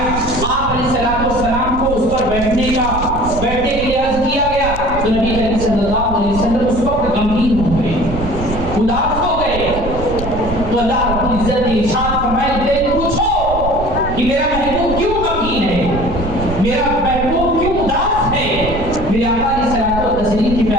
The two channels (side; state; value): right; noise; rumble, 7 dB below the sound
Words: آپ علیہ السلام کو اس پر بیٹھنے کے لیے عرض کیا گیا تو نبی کریم صلی اللہ علیہ وسلم اس وقت غمگین ہو گئے, اداس ہو گئے. تو اللہ رب العزت نے ارشاد فرمایا کہ پوچھو کہ میرا محبوب کیوں غمگین ہے, میرا محبوب کیوں اداس ہے. میرے آقا علیہ الصلوۃ والتسلیم کے